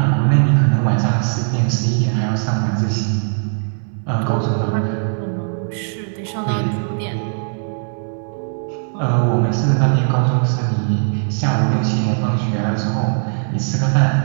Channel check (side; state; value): left; silent; digital silence